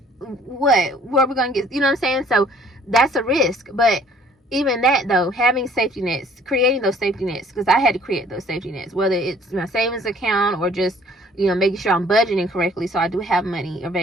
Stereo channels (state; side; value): normal; both; correlation 0.57